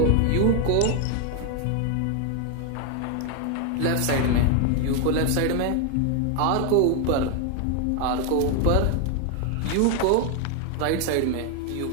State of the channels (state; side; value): different; both; correlation 0.01